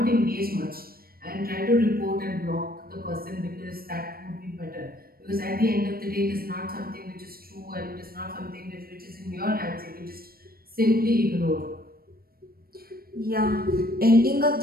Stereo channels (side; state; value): left; late; 0.44 ms